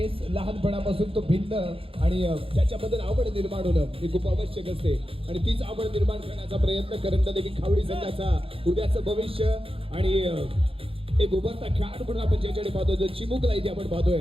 लहानपणापासून तो भिन्न आणि त्याच्याबद्दल आवड निर्माण होणं हे खूप आवश्यक असते आणि तीच आवड निर्माण करण्याचा प्रयत्न करंडदेवी खावडी संघाचा उद्याचं भविष्य आणि एक उभरता खेळाडू म्हणून आपण ज्याच्याकडे पाहतो जो चिमुकला इथे आपण पाहतोय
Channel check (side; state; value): left; late; 0.27 ms